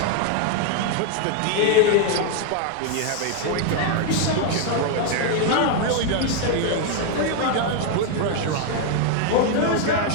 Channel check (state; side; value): different; both; correlation 0.00